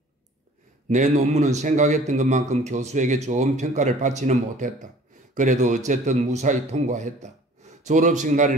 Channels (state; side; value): normal; both; correlation 0.49